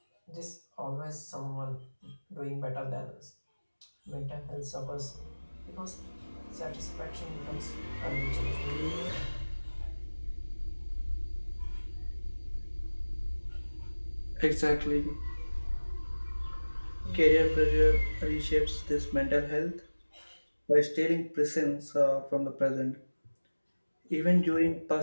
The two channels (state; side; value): inverted; both; correlation -1.00